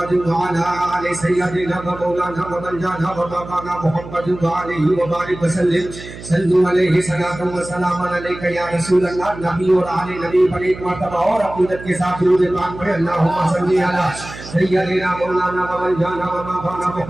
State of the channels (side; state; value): right; noise; hum, 14 dB below the sound